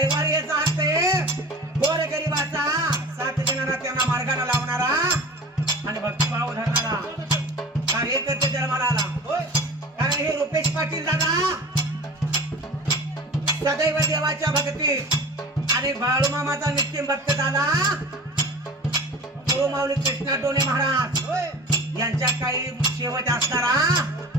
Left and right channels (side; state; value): both; normal; correlation 0.38